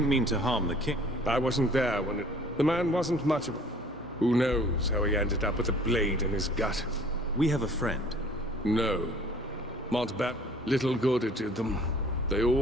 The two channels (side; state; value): both; normal; correlation 0.52